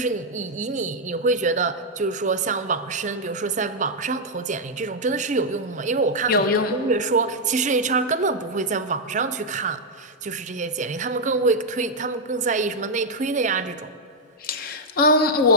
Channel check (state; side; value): normal; both; correlation -0.02